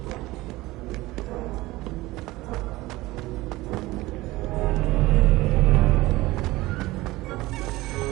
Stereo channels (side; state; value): left; quieter; 19.1 dB